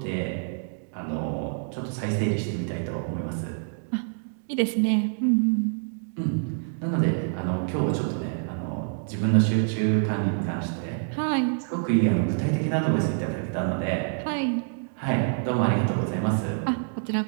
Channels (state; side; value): silent; left; digital silence